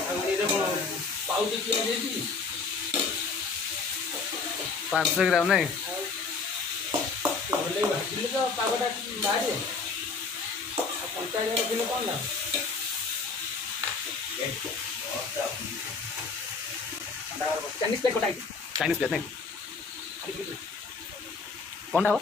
500 ग्राम नहीं चाइनीज प्लेट नहीं कौन हो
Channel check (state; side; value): quieter; right; 4.5 dB